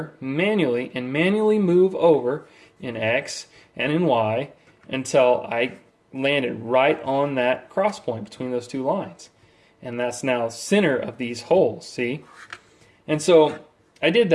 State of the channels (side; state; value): both; identical; correlation 1.00